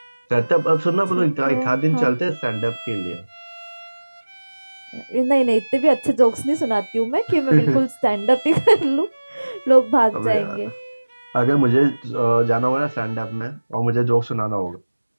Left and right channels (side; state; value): both; inverted; correlation -1.00